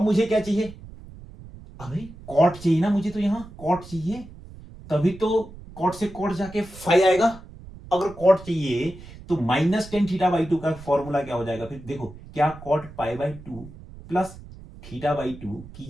मुझे क्या चाहिए, अभी कॉट चाहिए ना मुझे, तो यहां कॉट चाहिए, तभी तो कॉट से कॉट जाके 5 आएगा। अगर कॉट चाहिए तो -10 थीटा बाई 2 का फॉर्मूला क्या हो जाएगा फिर, देखो क्या cot pi by 2 plus theta by 2 की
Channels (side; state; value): right; noise; rumble, 17 dB below the sound